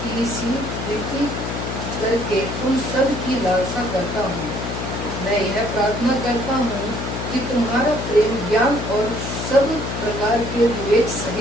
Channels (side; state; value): left; noise; hum, 5 dB below the sound